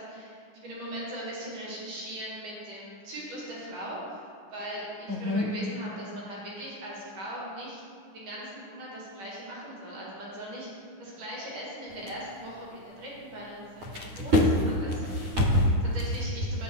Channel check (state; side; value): late; left; 9.9 ms